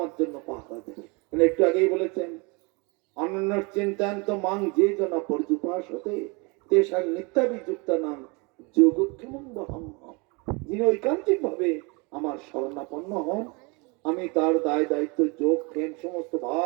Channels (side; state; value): left; quieter; 29.5 dB